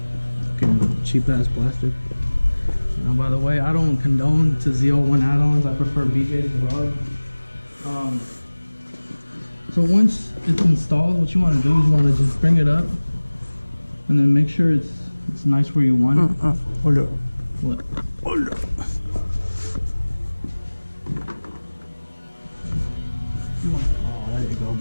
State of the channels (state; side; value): inverted; both; correlation -1.00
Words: Fucking cheap ass plastic. Now, by the way, I don't condone to ZL1 Addons. I prefer BJ's Garage. So once it's installed, what you want to do is you want to just bring it up, and then make sure it's nice where you want it. Hold up. What? Hold up. Oh, there you go,